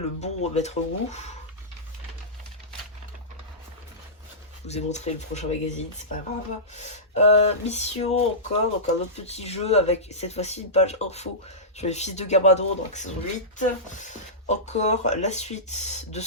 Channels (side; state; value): both; normal; correlation -0.18